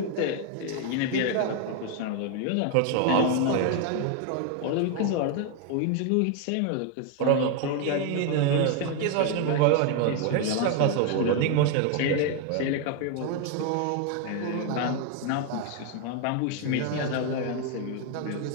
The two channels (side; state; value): both; different; correlation 0.01